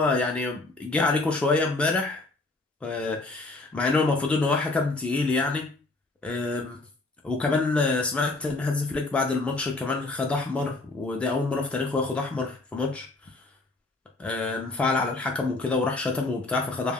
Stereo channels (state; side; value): quieter; right; 3.1 dB